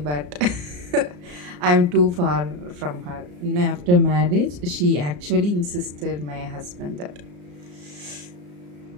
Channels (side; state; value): left; late; 34 ms